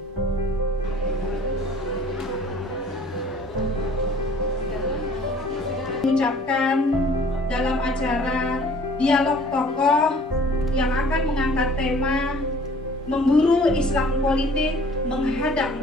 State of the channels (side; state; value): both; normal; correlation 0.53